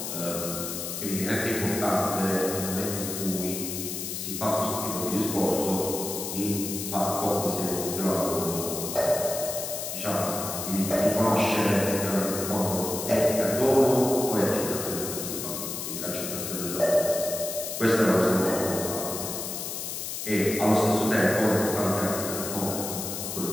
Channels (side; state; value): left; noise; hiss, 5 dB below the sound